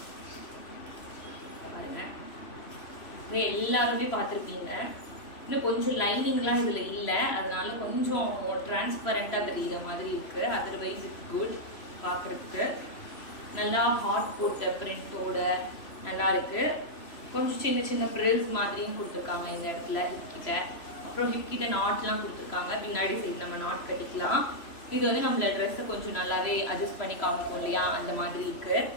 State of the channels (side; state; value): right; late; 3.0 ms